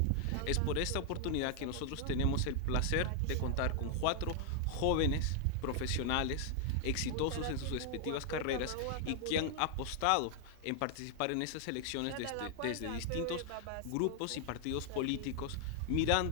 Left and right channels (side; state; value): both; different; correlation 0.00